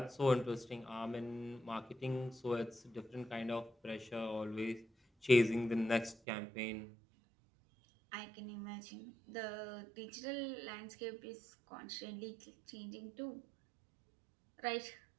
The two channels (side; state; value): left; drops out; at 6.2 s